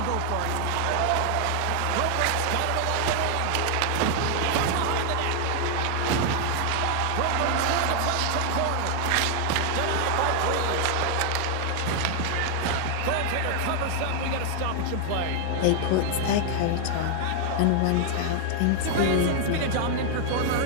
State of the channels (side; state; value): both; different; correlation 0.00